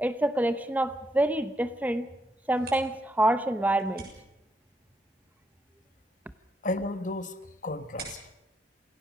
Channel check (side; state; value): both; normal; correlation 0.78